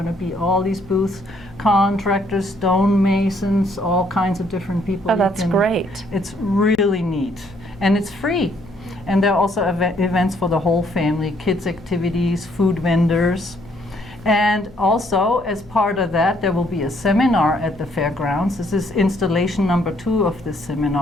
to be all these booths, contractors, stonemasons, all kinds of different people. Oh, that's great. It's really neat, and it's free. And there are also events for the whole family, kids activities, food vendors. And also, as part of that, there will be a seminar at the fairgrounds. This is installation number 2 of this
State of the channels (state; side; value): noise; left; hum, 22 dB below the sound